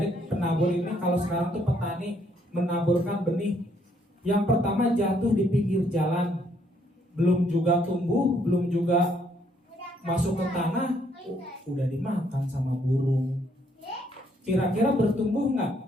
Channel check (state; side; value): normal; both; correlation 0.69